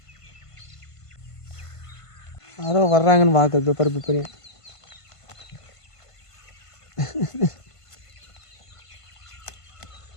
யாரோ வர்றாங்கன்னு பார்க்குறது பருப்பு பெரிய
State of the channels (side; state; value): right; late; 1.5 ms